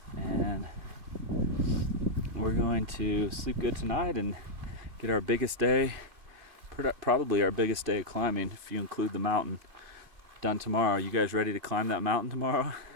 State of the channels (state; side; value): late; left; 2.3 ms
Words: and we're going to sleep good tonight and get our biggest day, probably our biggest day of climbing if you include the mountain, done tomorrow. You guys ready to climb that mountain tomorrow? Hell